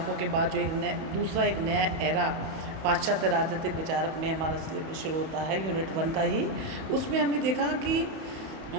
के बाद जो दूसरा एक नया एरा पाश्चात्य राजनीतिक विचारक में हमारा सिलेबस शुरू होता है यूनिट 1 का ही। उसमें हमने देखा कि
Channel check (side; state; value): left; late; 31 ms